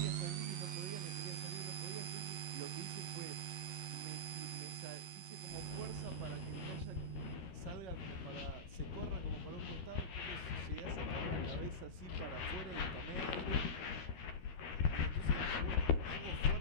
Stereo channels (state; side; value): late; right; 12 ms